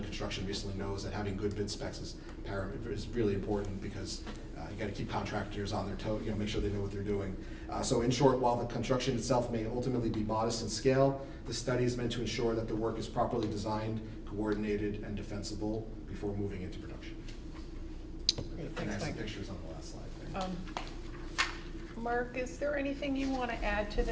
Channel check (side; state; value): both; identical; correlation 1.00